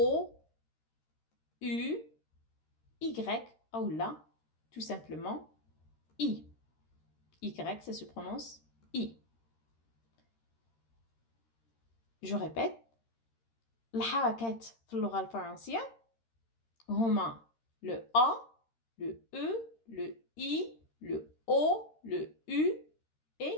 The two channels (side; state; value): right; late; 13 ms